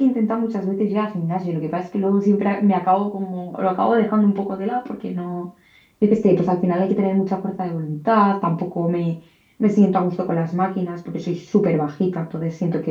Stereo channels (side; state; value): both; identical; correlation 1.00